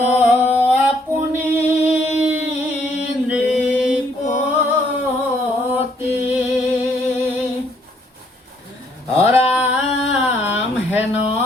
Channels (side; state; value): both; normal; correlation 0.68